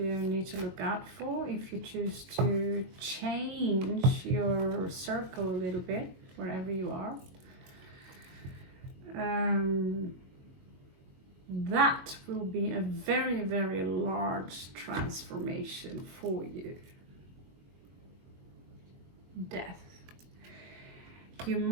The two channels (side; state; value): left; late; 22 ms